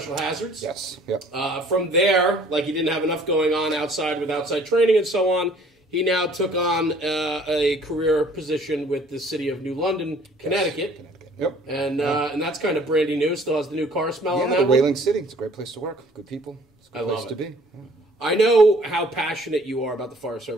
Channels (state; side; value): normal; both; correlation 0.56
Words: Hazards. Yes. Yep. From there, like he didn't have enough going on outside with outside training and so on, he now took on a career position with the city of New London, Connecticut. Yes. Connecticut. Yep. And that's kind of brandy new. Still has the new car smell on that the one. Whaling City. It's a great place to work. Good people. It's a good place to be. Yeah. I know how passionate you are about the fire